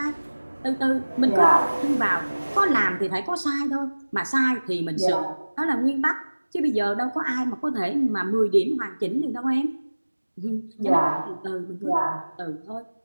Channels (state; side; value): inverted; both; correlation -1.00